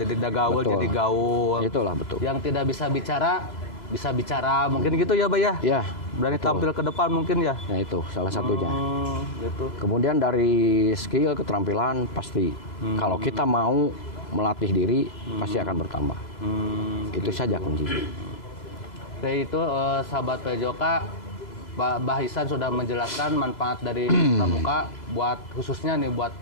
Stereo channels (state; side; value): late; right; 2.0 ms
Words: gaul betul. jadi gaul. Itulah betul. Yang tidak bisa bicara, mungkin gitu ya, Bay ya. Ya, Berani betul. tampil ke depan mungkin ya. Nah itu salah satunya. Gitu. Kemudian dari skill keterampilan pasti kalau kita mau melatih diri pasti akan bertambah. Itu saja kuncinya. Oke, itu sahabat PJOK, Mbah Ihsan sudah menjelaskan manfaat dari pramuka buat khususnya nih buat